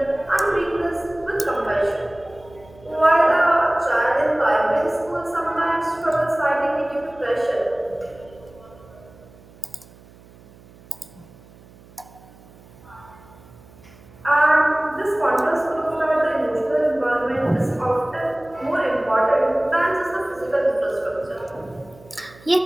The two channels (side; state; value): right; noise; hum, 24 dB below the sound